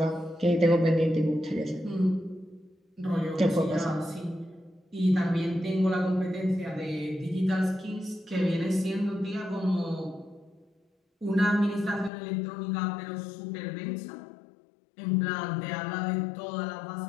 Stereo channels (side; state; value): right; drops out; at 12.1 s